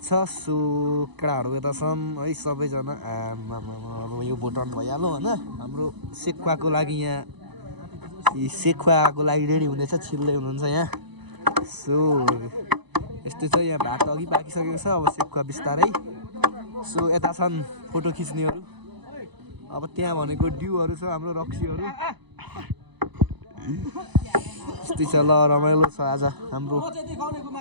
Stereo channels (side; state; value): left; late; 1.0 ms